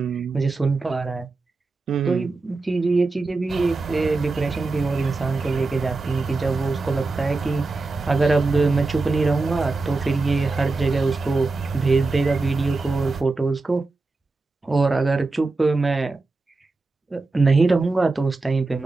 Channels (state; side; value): quieter; left; 3.6 dB